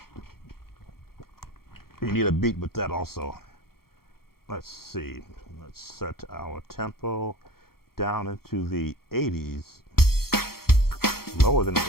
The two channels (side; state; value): right; late; 0.94 ms